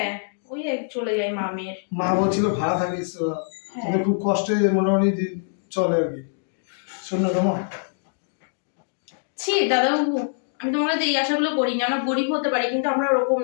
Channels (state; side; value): silent; right; digital silence